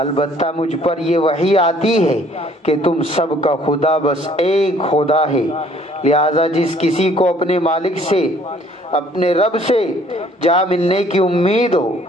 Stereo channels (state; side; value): normal; both; correlation 0.59